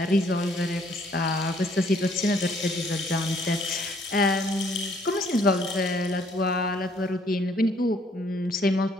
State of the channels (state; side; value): normal; both; correlation 0.64